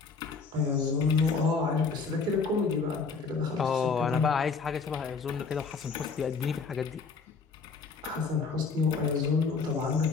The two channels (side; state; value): right; quieter; 4.9 dB